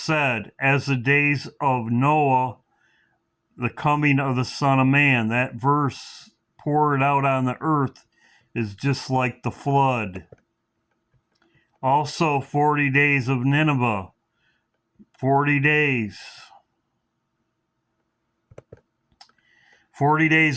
as the days of Noah, the coming of the Son of Man. That verse, poured out on the earth, is just like the flood. Also, 40 days of Nineveh. 40 days. 40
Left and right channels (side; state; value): both; identical; correlation 1.00